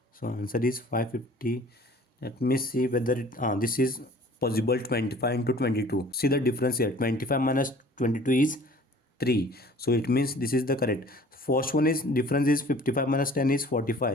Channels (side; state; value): both; normal; correlation 0.49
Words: So answer is 550. Let me see whether this is possible. 25 into 22. See the difference here. 25 minus 22 is 3. So it means this is the correct. First one is difference is 55 minus 10 is